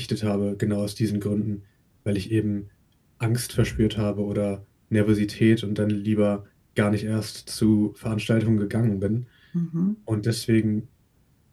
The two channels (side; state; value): both; identical; correlation 1.00